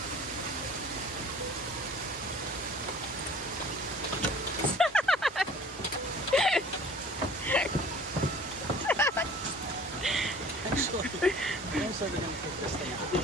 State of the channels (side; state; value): both; normal; correlation 0.48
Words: Actually, I'm also going to take this thing out.